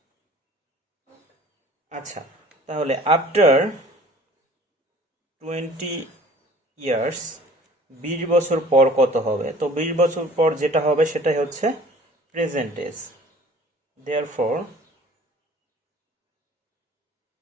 আচ্ছা, তাহলে আফটার 20 ইয়ার্স, 20 বছর পর কত হবে? তো 20 বছর পর যেটা হবে সেটাই হচ্ছে present age. Therefore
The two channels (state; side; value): normal; both; correlation 0.49